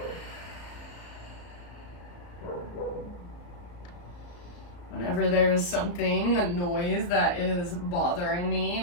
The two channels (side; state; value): right; late; 34 ms